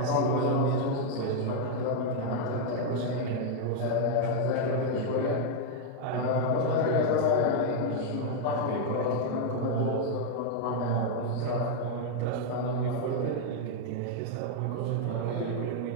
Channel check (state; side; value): different; both; correlation 0.00